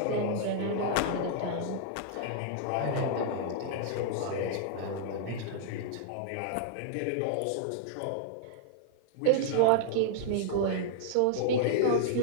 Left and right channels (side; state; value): both; different; correlation -0.01